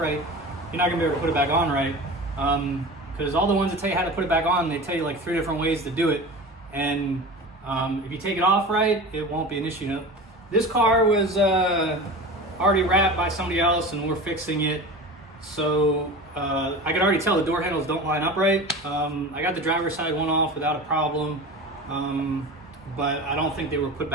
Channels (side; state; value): both; normal; correlation 0.32